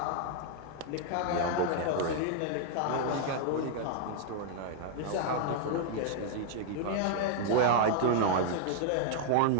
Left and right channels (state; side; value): different; both; correlation 0.00